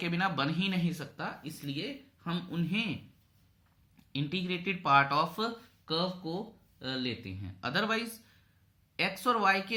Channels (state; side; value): identical; both; correlation 1.00